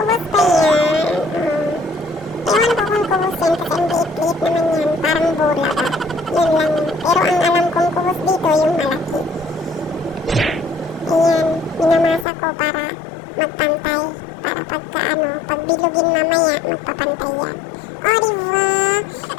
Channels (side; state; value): right; drops out; at 12.2 s